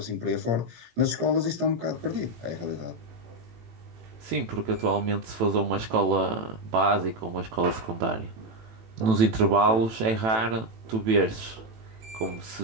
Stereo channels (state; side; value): late; left; 18 ms